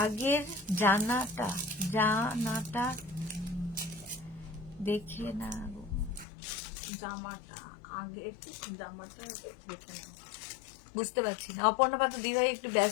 জানাটা দেখে না, জামাটা আগের জামাটা দেখে না, বুঝতে পারছি না। অপর্ণা পাত্র দিদিভাই একটু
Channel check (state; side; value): drops out; right; at 6.2 s